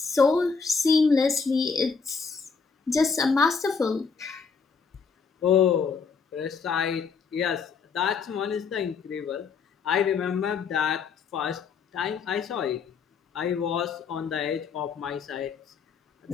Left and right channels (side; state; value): right; quieter; 5.5 dB